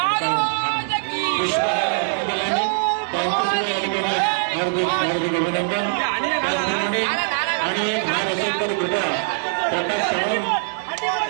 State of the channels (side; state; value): left; silent; digital silence